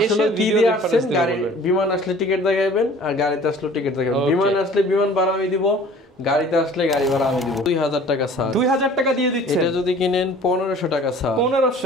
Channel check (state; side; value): normal; both; correlation 0.48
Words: এসে ভিডিও আসেন, গাড়ি বিমান আসলে টিকিট দেখাবেন আর গাড়িতে আসলে টিকিট দেখাবেন। বিমান আসলে বিমান ভাড়া আমি দিব, গাড়িতে আসলে গাড়ি ভাড়া আমি দিব। 2000 টাকা স্যার। 2000 টাকা দিয়ে দিচ্ছেন। এটা যদি কিনেন 1500 টাকা স্যার।